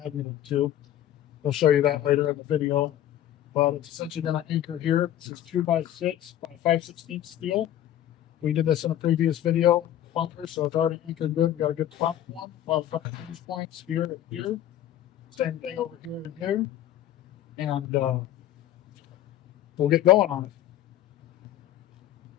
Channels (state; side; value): quieter; right; 11.9 dB